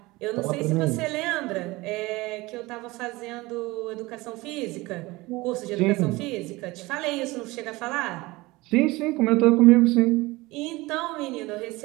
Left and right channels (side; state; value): left; quieter; 21.2 dB